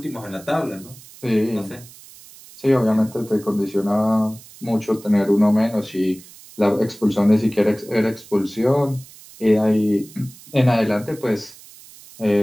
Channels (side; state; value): right; noise; hiss, 21 dB below the sound